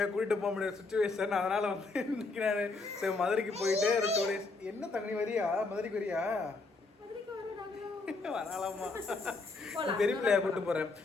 கூட்டிட்டு போக முடியாத சுச்சுவேஷன். அதனால வந்து இன்னைக்கு நான் ஸோ மதுரைக்கு போயிட்டு ஒரு 2 days. என்ன தங்கி வரியா? மதுரைக்கு வரியா? வரலாமா? பெரிய பிள்ளையா கூப்பிட்டு போறேன்.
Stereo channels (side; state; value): right; quieter; 3.7 dB